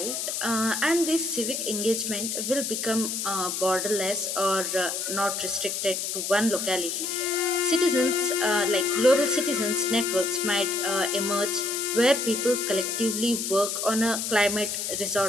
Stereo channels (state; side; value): noise; left; hiss, 3 dB below the sound